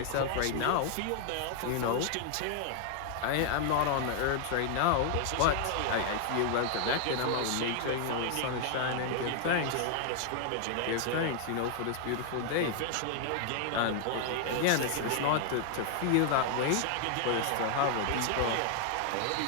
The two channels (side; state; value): both; different; correlation 0.00